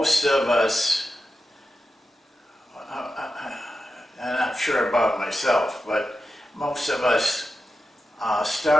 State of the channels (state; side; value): normal; both; correlation 0.90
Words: of us, I'm not sure about myself, but most of us